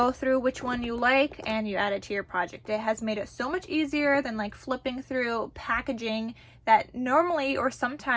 through which one you like, and you add it to your project. It has made it so much easier than like flipping through packaging that normally or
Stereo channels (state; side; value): identical; both; correlation 1.00